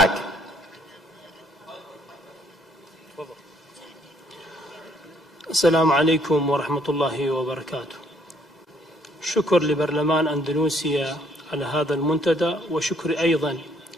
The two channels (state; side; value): normal; both; correlation 0.66